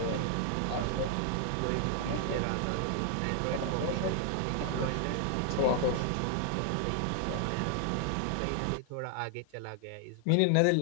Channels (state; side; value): different; both; correlation 0.00